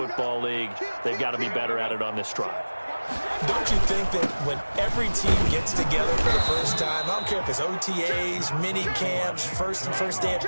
League. They've got to be better at it on this drive. Don't you think that when every team gets together for the first time, I don't care if it's OTAs, mini camps, first day of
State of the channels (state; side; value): inverted; both; correlation -1.00